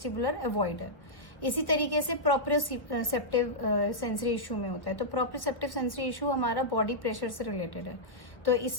अवॉइडर। इसी तरीके से प्रोप्रियोसेप्टिव सेंसरी इशू में होता है। तो प्रोप्रियोसेप्टिव सेंसरी इशू हमारा बॉडी प्रेशर से रिलेटेड है। तो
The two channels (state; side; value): late; right; 1.0 ms